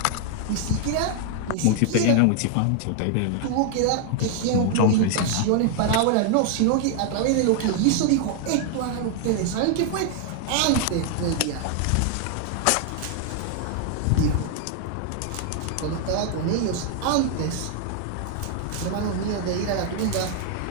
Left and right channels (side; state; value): both; different; correlation 0.00